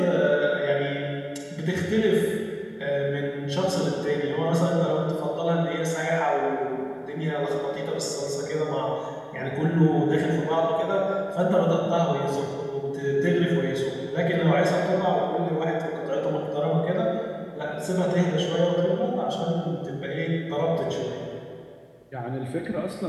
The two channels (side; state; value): both; identical; correlation 1.00